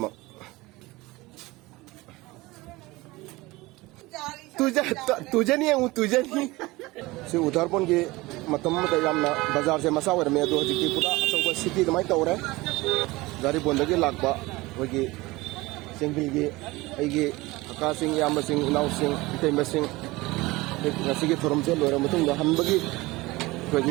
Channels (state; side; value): quieter; left; 21.0 dB